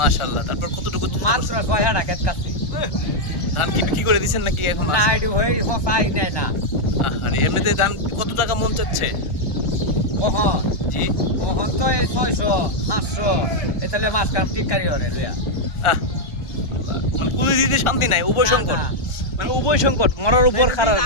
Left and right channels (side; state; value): right; late; 1.4 ms